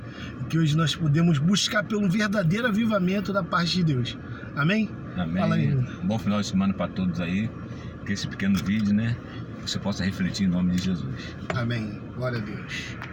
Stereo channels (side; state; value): both; identical; correlation 1.00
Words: E que hoje nós podemos buscar pelo verdadeiro avivamento da parte de Deus. Amém? Amém. Fala aí. Bom final de semana para todos aí. Que esse pequeno vídeo, né? Você possa refletir em nome de Jesus. Amém. Glória a Deus.